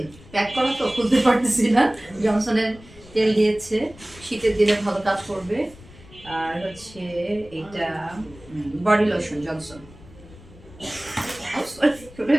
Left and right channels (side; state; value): left; noise; rumble, 21 dB below the sound